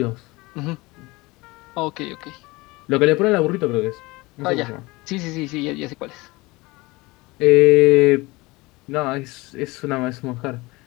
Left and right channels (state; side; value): quieter; right; 22.5 dB